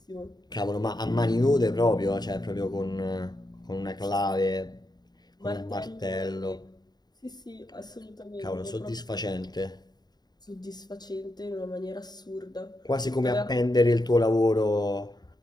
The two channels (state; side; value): late; right; 0.20 ms